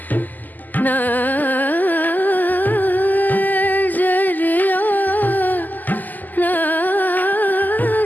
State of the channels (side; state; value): right; late; 0.084 ms